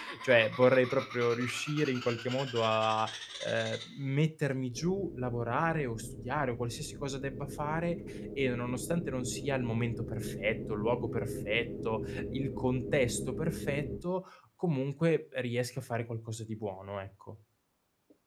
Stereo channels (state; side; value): identical; both; correlation 1.00